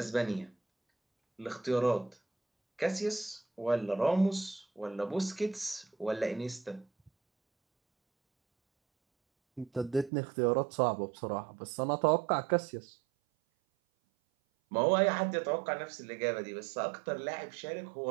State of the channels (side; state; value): left; drops out; at 10.1 s